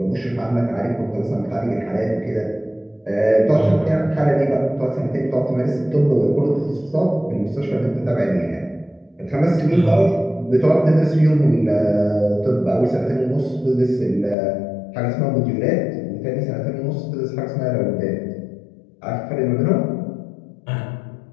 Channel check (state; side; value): drops out; right; at 14.4 s